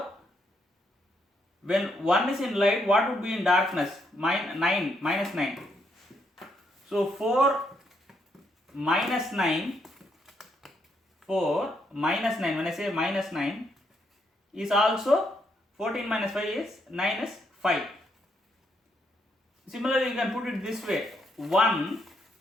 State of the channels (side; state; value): both; normal; correlation 0.76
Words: when 1 is in light, what would be in darkness? Minus 9. So 4 minus 9, when I say minus 9, is also 14 minus 5 is 9 is 5. Similarly, you can put it this way: 1